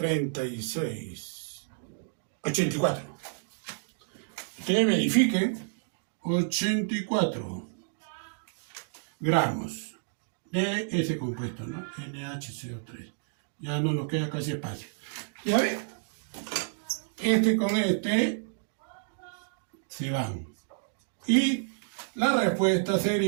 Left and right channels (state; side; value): silent; left; digital silence